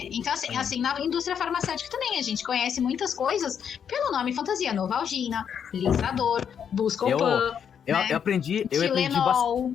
Então, assim, na indústria farmacêutica também, a gente conhece muitas coisas pelo nome fantasia. Novalgina, Lisador, Buscopan. Eu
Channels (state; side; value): quieter; right; 7.9 dB